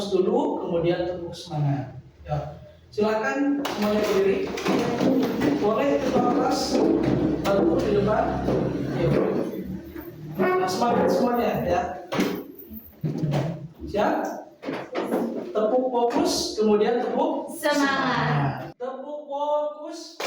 dulu, kemudian tepuk semangat. Ya. Silakan semuanya berdiri. Boleh ketua kelas bantu di depan. Yuk. Nah, semangat semuanya ya. Siap? Tepuk fokus, kemudian tepuk Semangat. Tepuk fokus.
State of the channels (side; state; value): both; identical; correlation 1.00